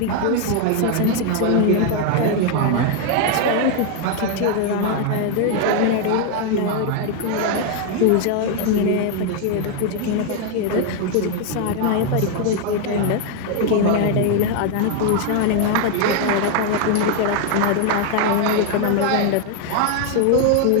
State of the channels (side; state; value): both; different; correlation 0.01